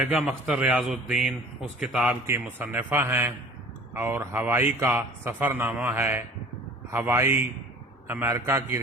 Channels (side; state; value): both; normal; correlation 0.45